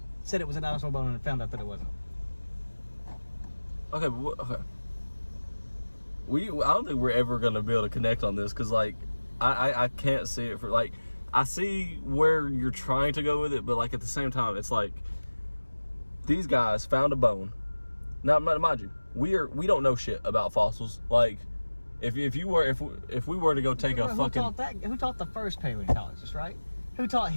said it was a dinosaur bone and found out that it wasn't. Okay, but okay. I don't think we're ever gonna be able to connect on this because, like, I can't see it for, like, I see where you're trying to go with it, but, like, at the same time, it's like these guys found a bone. Now, mind you, we don't know shit about fossils. Like, if we were to go take a fucking... Who taught the first paleontologist, right? Who taught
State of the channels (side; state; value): both; inverted; correlation -1.00